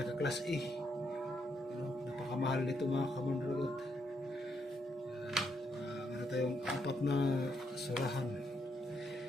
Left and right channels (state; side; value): normal; both; correlation 0.77